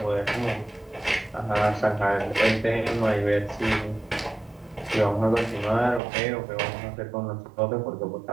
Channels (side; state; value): left; drops out; at 6.0 s